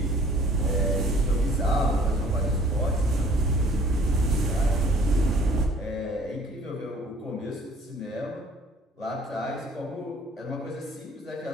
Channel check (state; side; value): normal; both; correlation 0.54